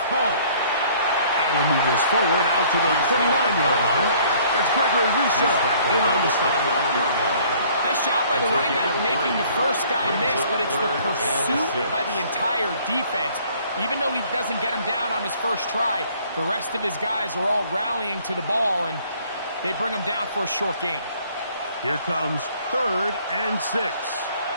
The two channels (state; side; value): inverted; both; correlation -0.57